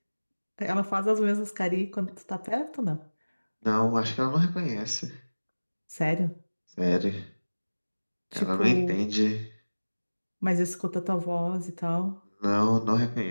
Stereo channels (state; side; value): inverted; both; correlation -1.00